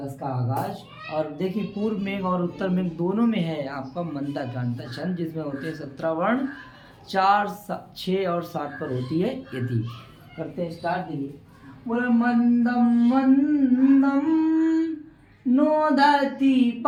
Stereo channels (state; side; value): identical; both; correlation 1.00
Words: का आगाज। और देखिए, पूर्व में और उत्तर में दोनों में है आपका मंदा जानता छंद, जिसमें होते हैं 17 वर्ण। 4, 6 और 7 पर होती है यदि। करते हैं स्टार्ट। देखिए, बोले मंदम मंदम नोदति